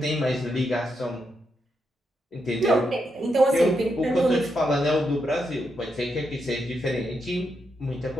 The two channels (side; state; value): both; normal; correlation 0.82